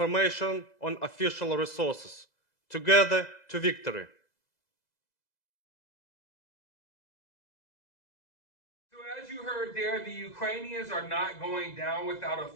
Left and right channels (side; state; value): right; late; 2.0 ms